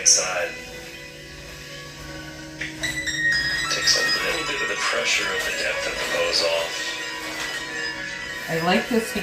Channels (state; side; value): identical; both; correlation 1.00